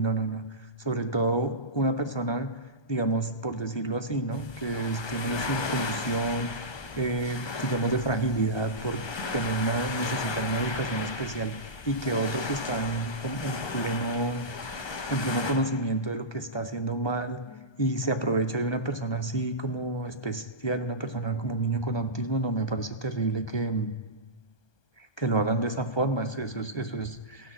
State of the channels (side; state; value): right; late; 1.2 ms